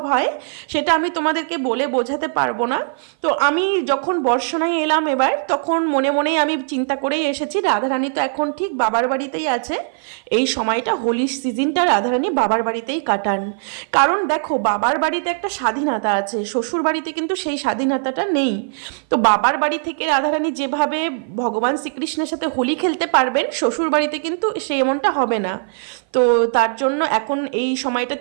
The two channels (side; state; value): left; silent; 57 dB below the other